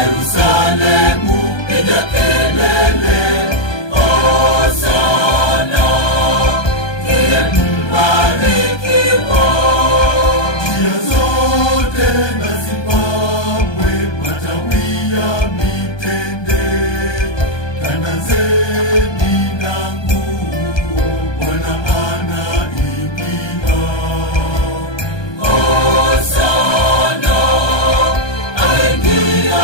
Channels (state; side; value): late; right; 1.2 ms